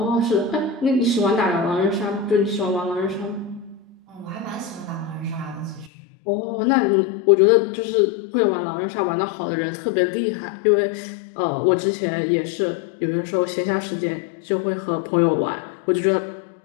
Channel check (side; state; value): right; drops out; at 5.9 s